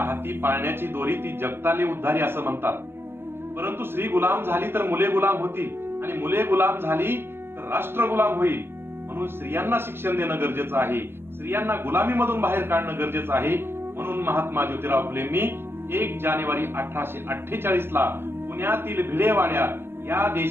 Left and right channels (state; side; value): late; left; 0.11 ms